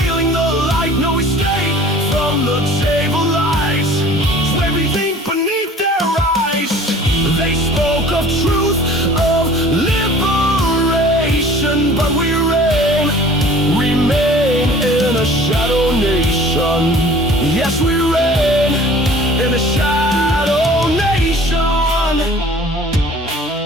Shadow nation, yes, we reign in a shadow nation.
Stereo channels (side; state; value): both; normal; correlation 0.48